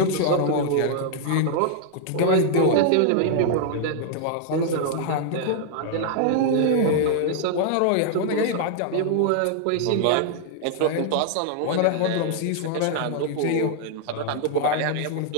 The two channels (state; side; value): different; both; correlation 0.00